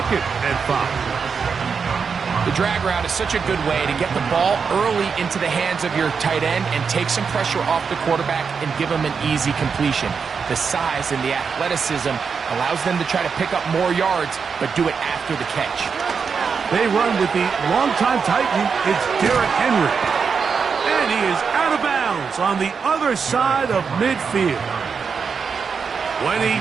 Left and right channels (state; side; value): quieter; left; 5.8 dB